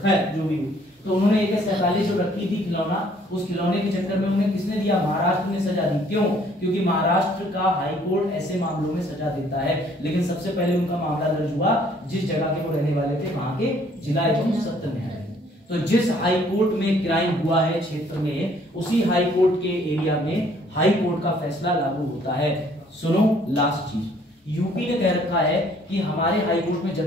खैर जो भी हो, तो उन्होंने AK-47 जो रखी थी खिलौना, उस खिलौने के चक्कर में उन्हें किसने दिया? महाराष्ट्र ने सजा दी। क्यों? क्योंकि महाराष्ट्र का हाई कोर्ट ऐसे मामलों में सजा देता है। लेकिन सबसे पहले उनका मामला दर्ज हुआ जिस जगह के वो रहने वाले थे, वहां के जिला एवं सत्र न्यायालय। तो जिस हाई कोर्ट में क्राइम हुआ है क्षेत्र में, उसी हाई कोर्ट के एरिया में हाई कोर्ट का फैसला लागू होता है। सुनो लास्ट चीज, यूपी ने कह रखा है कि हमारे हाई कोर्ट में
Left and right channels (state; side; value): normal; both; correlation 0.61